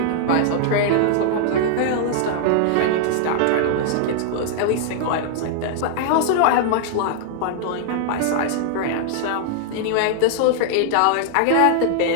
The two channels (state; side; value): different; both; correlation -0.01